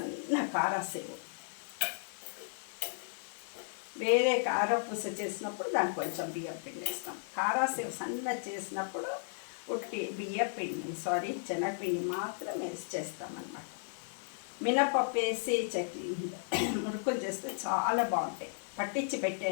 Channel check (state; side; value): silent; right; digital silence